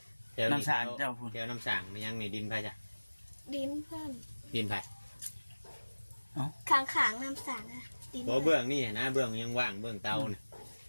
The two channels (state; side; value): inverted; both; correlation -1.00